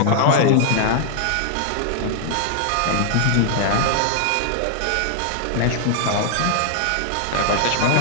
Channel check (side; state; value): both; different; correlation 0.00